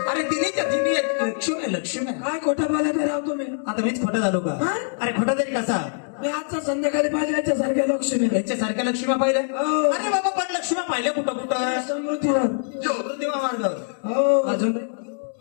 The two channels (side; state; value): right; silent; digital silence